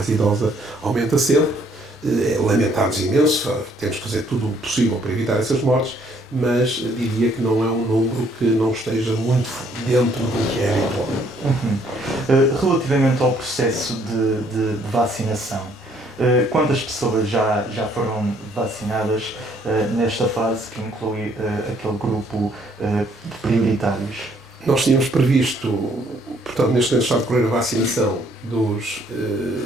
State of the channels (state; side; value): normal; both; correlation 0.65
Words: idosa, aumenta sempre. Lamentamos imenso, temos que fazer tudo o possível para evitar essas mortes, mas diria que não é um número que não esteja muito dentro do que é habitual. Relativamente ao processo de vacinação, quantas pessoas já foram vacinadas nesta fase que inclui aquele grupo de prioritários? Nós tínhamos previsto, portanto, neste momento está a decorrer a vacinação dos